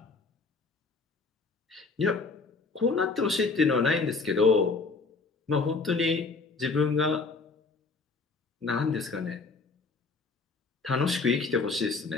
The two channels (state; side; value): quieter; right; 4.1 dB